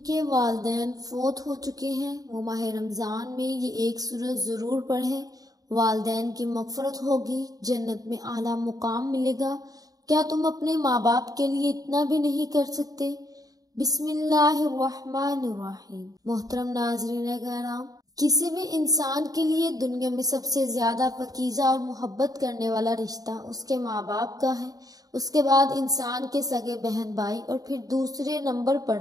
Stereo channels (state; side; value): late; left; 0.18 ms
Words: والدین فوت ہو چکے ہیں وہ ماہ رمضان میں یہ ایک سورت ضرور پڑھیں، والدین کی مغفرت ہوگی، جنت میں اعلیٰ مقام ملے گا۔ کیا تم اپنے ماں باپ کے لیے اتنا بھی نہیں کر سکتے؟ بسم اللہ الرحمن الرحیم۔ محترم ناظرین کرام، کسی بھی انسان کے لیے دنیا میں سب سے زیادہ پاکیزہ اور محبت کرنے والا رشتہ اس کے ماں باپ کا ہے۔ اس کے بعد انسان کے سگے بہن بھائی اور پھر دوسرے نمبر پر